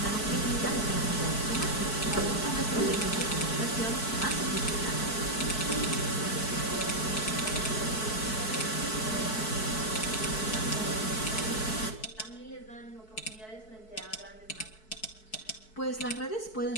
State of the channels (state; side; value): late; right; 4.6 ms